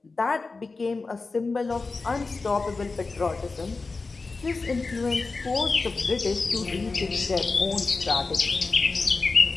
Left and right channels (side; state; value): right; quieter; 3.9 dB